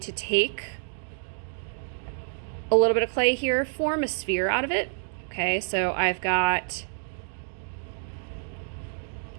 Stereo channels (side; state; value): left; silent; digital silence